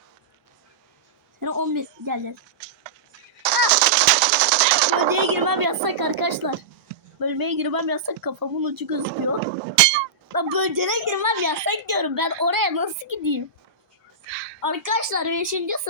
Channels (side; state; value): left; quieter; 4.0 dB